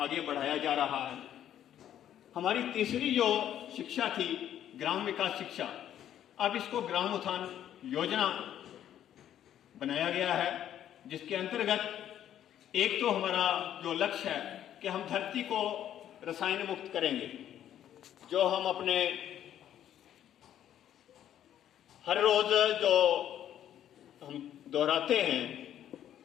बढ़ाया जा रहा है। हमारी तीसरी जो शिक्षा थी ग्राम विकास शिक्षा, अब इसको ग्राम उत्थान योजना बनाया गया है, जिसके अंतर्गत एक तो हमारा जो लक्ष्य है कि हम धरती को रसायन मुक्त करेंगे। जो हम अपने हर रोज जो हम दोहराते हैं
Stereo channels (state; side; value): quieter; right; 10.8 dB